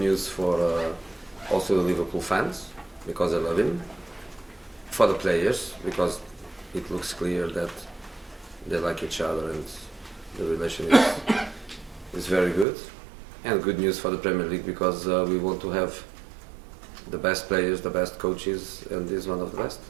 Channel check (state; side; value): drops out; left; at 12.7 s